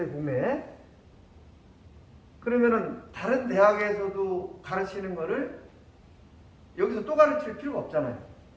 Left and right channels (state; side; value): identical; both; correlation 1.00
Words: 국내에. 그러면은 다른 대학에서도 가르치는 거를 여기서 또 가르칠 필요가 없잖아요.